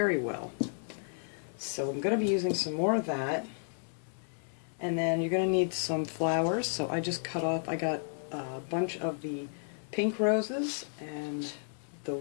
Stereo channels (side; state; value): right; silent; 56 dB below the other